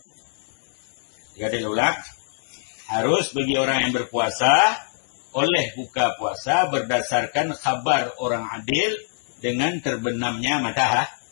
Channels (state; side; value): silent; right; digital silence